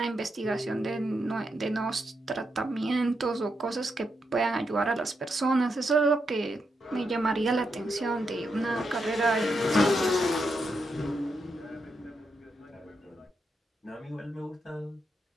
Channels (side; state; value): both; normal; correlation 0.83